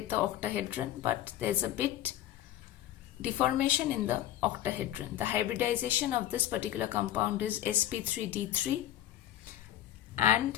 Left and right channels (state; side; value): quieter; right; 12.7 dB